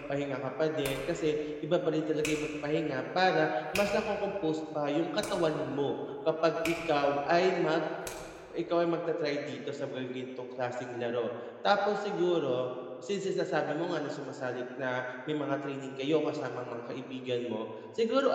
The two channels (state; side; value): identical; both; correlation 1.00